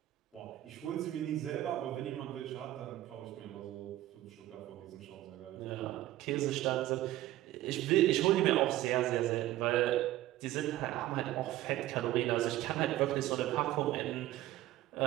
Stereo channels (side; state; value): left; quieter; 15.0 dB